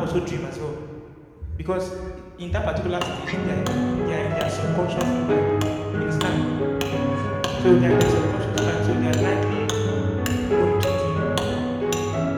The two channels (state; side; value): identical; both; correlation 1.00